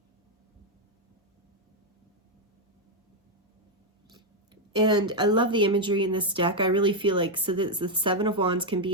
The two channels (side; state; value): both; normal; correlation 0.02